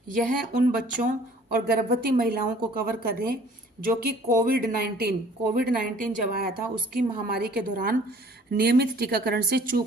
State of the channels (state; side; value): normal; both; correlation 0.53